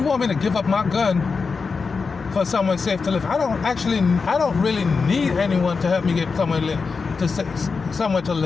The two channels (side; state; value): right; quieter; 4.9 dB